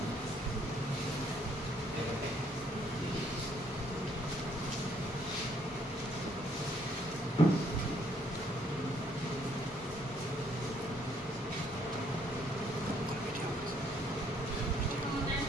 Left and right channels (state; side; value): normal; both; correlation 0.67